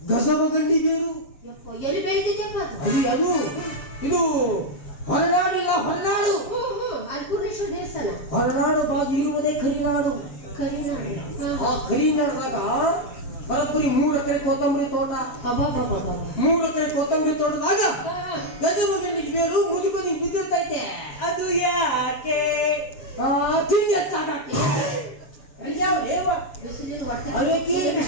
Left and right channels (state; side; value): late; right; 7.6 ms